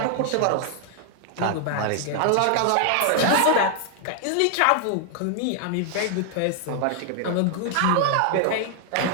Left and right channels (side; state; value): both; different; correlation 0.00